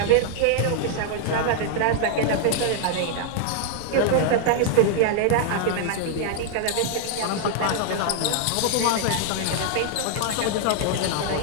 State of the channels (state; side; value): different; both; correlation 0.00